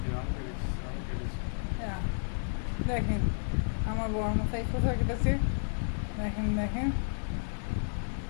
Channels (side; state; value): right; silent; digital silence